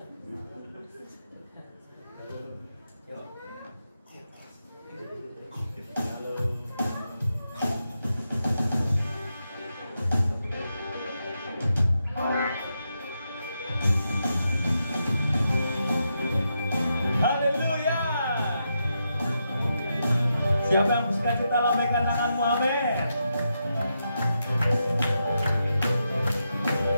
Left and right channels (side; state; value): both; inverted; correlation -0.85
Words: Siapa yang bersuka kita lambaikan tanganmu, amin.